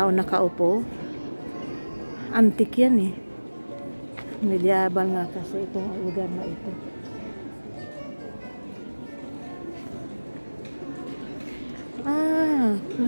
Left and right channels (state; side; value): inverted; both; correlation -1.00